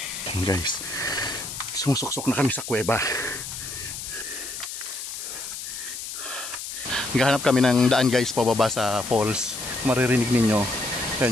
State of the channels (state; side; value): noise; left; hiss, 8 dB below the sound